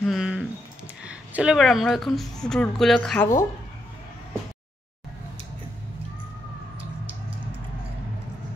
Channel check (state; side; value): normal; both; correlation 0.80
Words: চলো এবার আমরা এখন ফ্রুটগুলো খাবো।